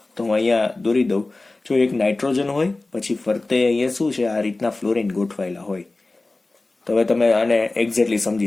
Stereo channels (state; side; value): quieter; right; 3.1 dB